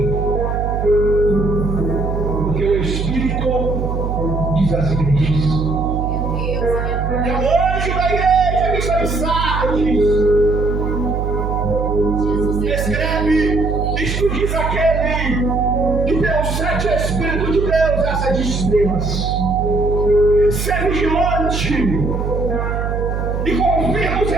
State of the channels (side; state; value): right; noise; hum, 2 dB below the sound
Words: Porque o Espírito diz às igrejas. É o anjo da igreja que está em Sardes. Escreve, isto diz aquele que tem os 7 Espíritos de Deus, essa de estrelas. Ser vigilante e confirma os